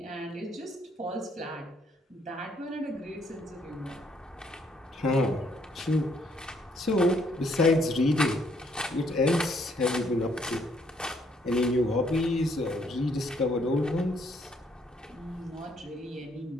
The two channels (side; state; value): both; normal; correlation 0.68